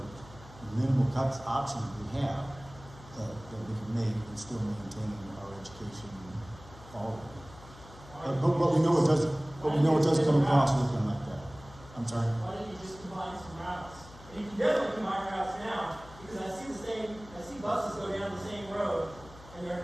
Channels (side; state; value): left; noise; hum, 19 dB below the sound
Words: minimal cuts options we have that we can make and still maintain our education quality. But we know it does. But we know it does come across looking like that. I'm sorry. Why don't you just combine some routes? And you can definitely combine routes now because I see buses go down the same road, and